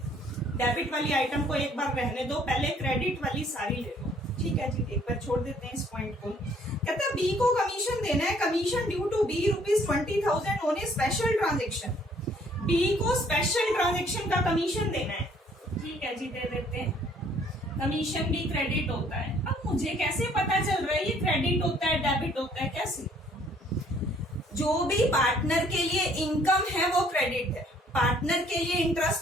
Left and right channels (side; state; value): both; normal; correlation 0.61